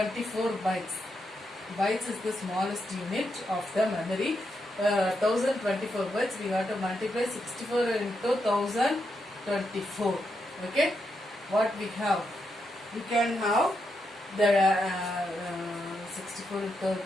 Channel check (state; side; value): normal; both; correlation 0.83